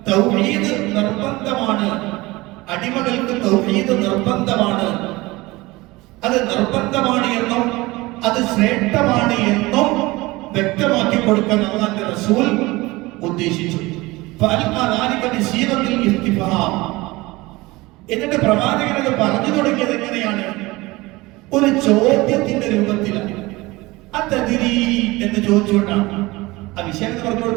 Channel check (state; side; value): quieter; left; 21.2 dB